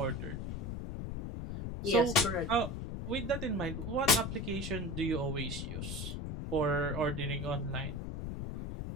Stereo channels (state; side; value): noise; left; rumble, 5 dB below the sound